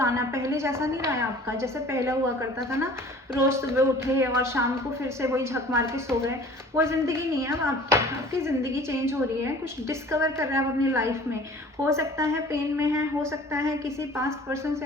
पहले जैसा नहीं रहा है आपका, जैसे पहले हुआ करता था ना, रोज सुबह उठे और शाम को फिर से वही झक मार के सो गए, वो ज़िंदगी नहीं है अब आपकी ज़िंदगी चेंज हो रही है। कुछ डिस्कवर कर रहे हैं आप अपनी लाइफ में। हो सकता है पेन में है, हो सकता है किसी पास्ट पर्सन से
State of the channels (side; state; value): both; normal; correlation 0.47